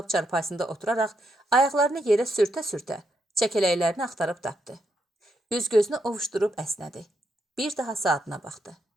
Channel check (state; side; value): normal; both; correlation 0.80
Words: çarpayısında oturaraq ayaqlarını yerə sürtə-sürtə çəkələklərini axtarıb tapdı. Üz-gözünü ovuşdurub əsnədi. Bir daha saatına baxdı.